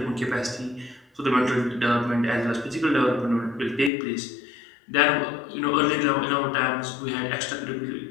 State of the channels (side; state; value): right; drops out; at 3.9 s